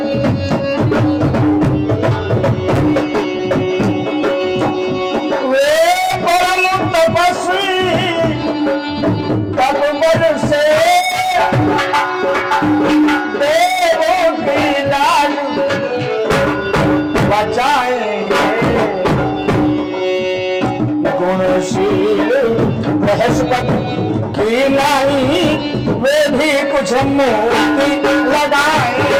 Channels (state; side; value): identical; both; correlation 1.00